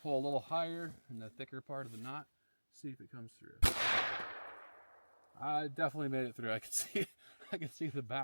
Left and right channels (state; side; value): inverted; both; correlation -1.00